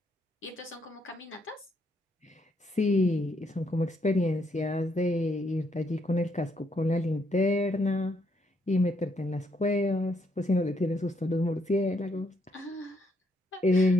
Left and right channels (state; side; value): normal; both; correlation 0.74